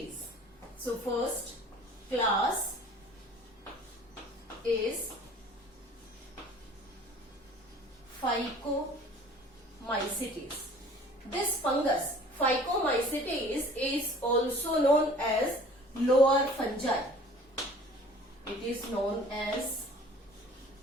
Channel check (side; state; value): both; normal; correlation 0.48